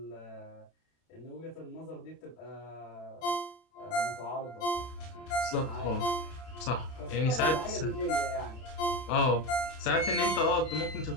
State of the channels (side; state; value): right; late; 32 ms